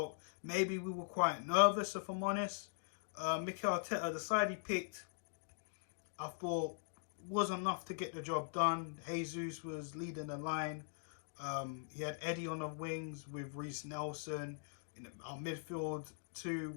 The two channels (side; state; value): right; silent; digital silence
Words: maybe we were quite nervous, if I'm honest. Mikel Arteta, the side he picked, I thought wasn't enough to get the job done. Jesus was leading the line. He had Eddie on the wings with Reece Nelson. In our midfield, three